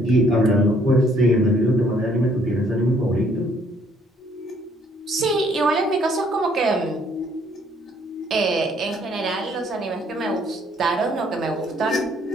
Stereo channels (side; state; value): both; normal; correlation 0.64